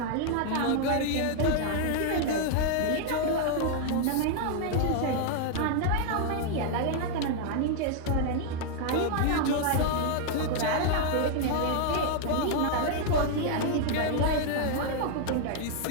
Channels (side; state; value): both; different; correlation 0.00